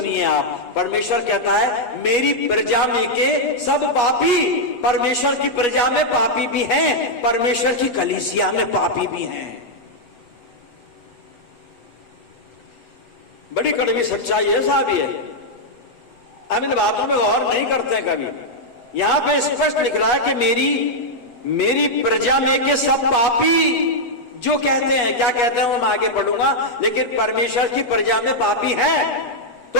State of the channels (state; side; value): late; right; 8.3 ms